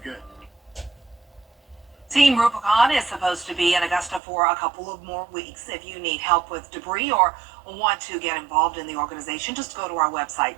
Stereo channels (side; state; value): left; drops out; at 4.2 s